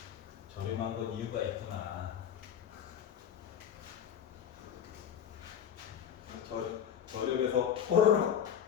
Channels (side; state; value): right; quieter; 8.8 dB